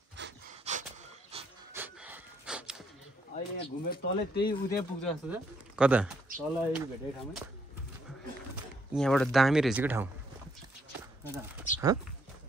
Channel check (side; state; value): both; normal; correlation 0.72